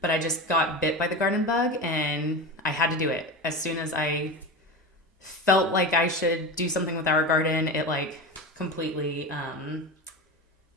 but I just got bit by the garden bug and I had to do it. As soon as I felt like I should do something with our garden, it like completely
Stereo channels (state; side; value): normal; both; correlation 0.25